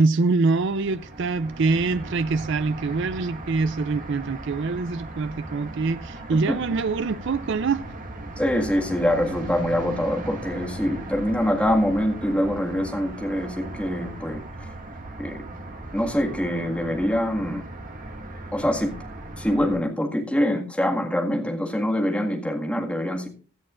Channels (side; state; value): both; normal; correlation 0.75